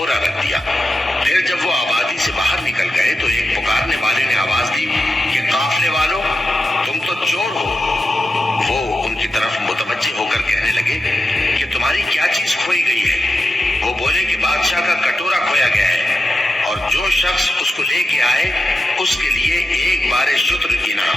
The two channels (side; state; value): both; normal; correlation 0.90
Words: رکھ دیا۔ پھر جب وہ آبادی سے باہر نکل گئے تو ایک پکارنے والے نے آواز دی کہ قافلے والوں، تم تو چور ہو۔ وہ ان کی طرف متوجہ ہو کر کہنے لگے کہ تمہاری کیا چیز کھوئی گئی ہے؟ وہ بولے کہ بادشاہ کا کٹورا کھویا گیا ہے، اور جو شخص اس کو لے کے آئے اس کے لیے ایک بار شتر